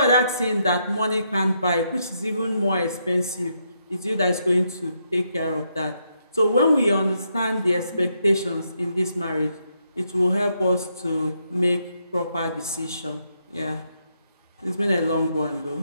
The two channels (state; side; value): inverted; both; correlation -0.78